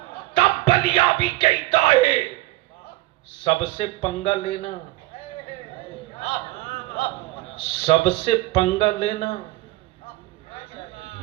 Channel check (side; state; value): left; quieter; 18.9 dB